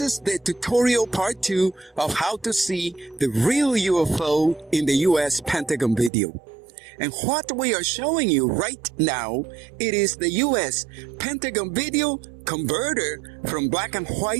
the tutorial part 2 of how to see the real UFO in the US Pentagon video. And what we are showing you right now, it is the US Pentagon video converter from black and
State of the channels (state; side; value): drops out; left; at 6.1 s